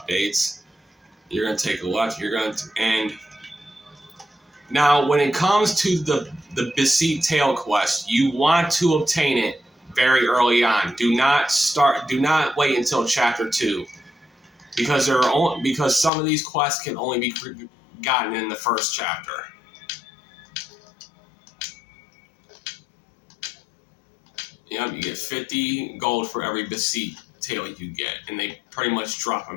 You're going to take a left. You're going to... And now, when it comes to the Beseet Tail quest, you want to obtain it very early on. Do not wait until chapter 2. Because some of these quests can only be gotten in the first chapter. Yep, you get 50 gold for every Beseet tail you get, and they pretty much drop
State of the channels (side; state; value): right; drops out; at 16.1 s